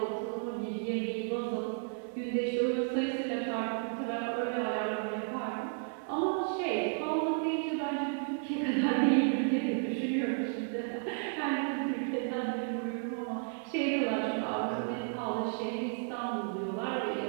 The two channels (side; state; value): left; silent; 56 dB below the other